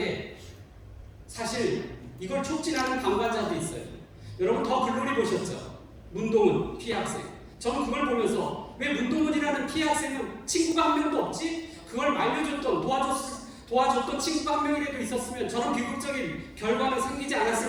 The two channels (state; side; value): identical; both; correlation 1.00